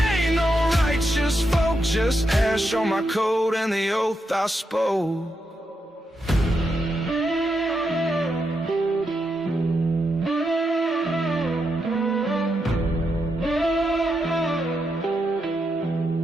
no righteous folk, just ash on my coat and the oath I spoke.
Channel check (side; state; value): both; normal; correlation 0.83